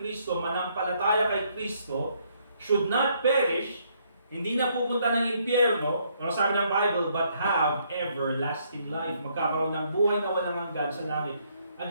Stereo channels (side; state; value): both; inverted; correlation -0.70